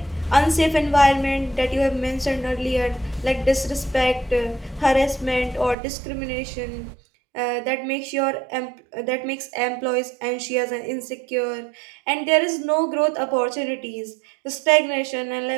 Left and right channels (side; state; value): left; drops out; at 5.8 s